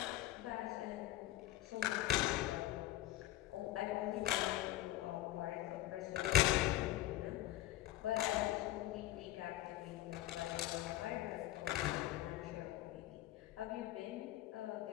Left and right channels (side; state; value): right; quieter; 15.1 dB